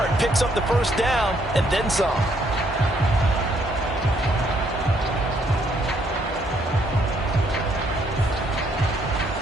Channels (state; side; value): normal; both; correlation 0.70